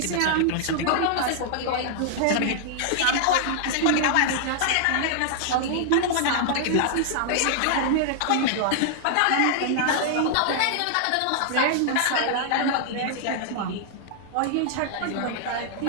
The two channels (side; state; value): both; different; correlation -0.01